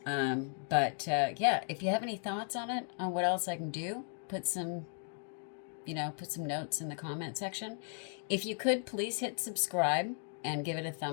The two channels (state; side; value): silent; right; 54 dB below the other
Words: But yeah, if you have any thoughts on it, on what else I can do, put some notes in the comment section. If you could, please hit subscribe and give it a